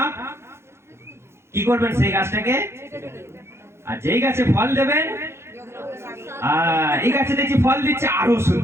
কি করবেন সেই গাছটাকে? আর যেই গাছে ফল দেবেন, এই গাছে দেখছি ফল দিচ্ছে, আরো ওষুধ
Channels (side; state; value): left; late; 0.13 ms